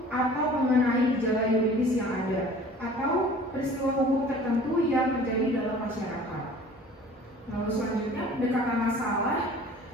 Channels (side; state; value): both; normal; correlation 0.47